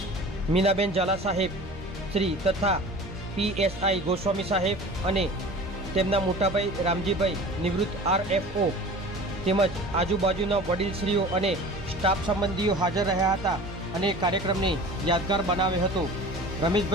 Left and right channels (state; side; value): normal; both; correlation 0.40